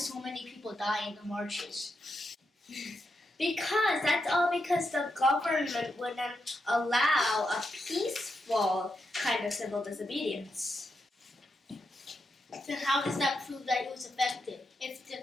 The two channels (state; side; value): normal; both; correlation 0.84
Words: many people die in the marches? Because the government wouldn't allow a peaceful kind of civil disobedience. Then how does that prove that it was effective? If